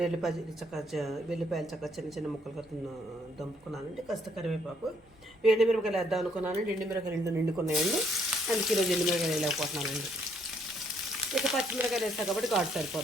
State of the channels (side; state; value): both; normal; correlation 0.68